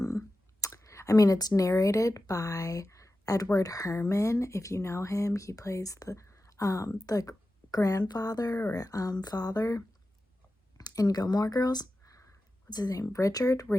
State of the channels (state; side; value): normal; both; correlation 0.93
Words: it's narrated by Edward Herman. If you know him, he plays the grandfather or father in Gilmore Girls. What's his name?